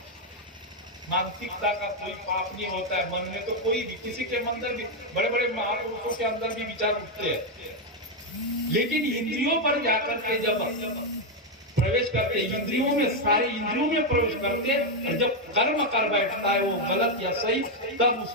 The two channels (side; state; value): both; normal; correlation 0.03